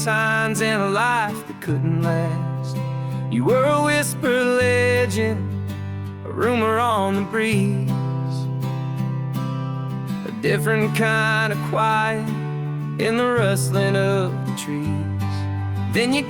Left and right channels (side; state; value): both; identical; correlation 1.00